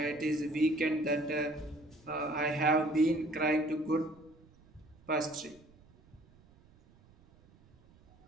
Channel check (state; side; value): noise; right; rumble, 27 dB below the sound